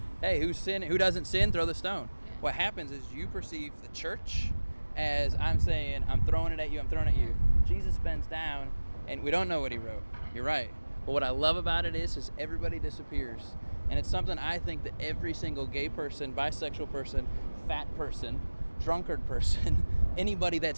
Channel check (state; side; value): inverted; both; correlation -1.00